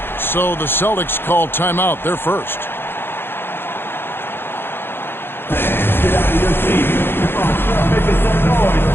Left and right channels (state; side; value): late; right; 0.10 ms